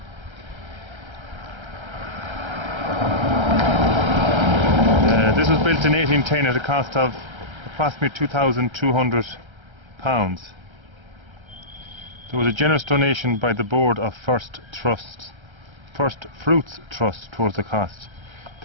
This was built in 1810 at a cost of approximately £2,200. There was a generous donation by the board of First Fruits Trust towards the cost.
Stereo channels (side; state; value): left; late; 1.3 ms